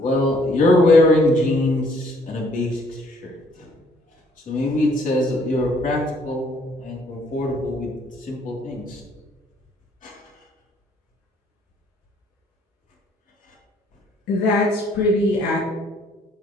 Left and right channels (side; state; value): both; normal; correlation 0.63